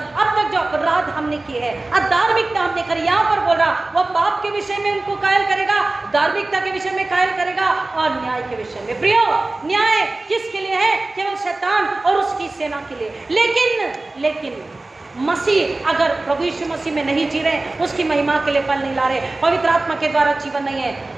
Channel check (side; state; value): left; quieter; 3.0 dB